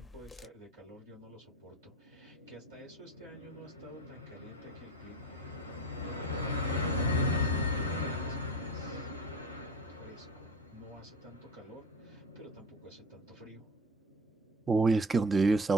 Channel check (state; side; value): normal; both; correlation 0.36